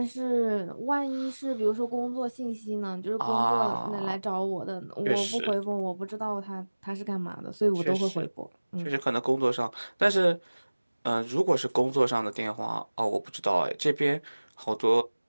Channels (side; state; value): both; inverted; correlation -1.00